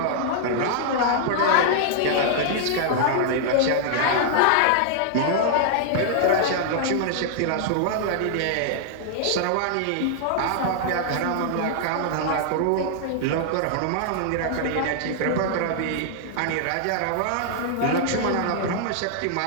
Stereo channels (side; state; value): both; different; correlation -0.01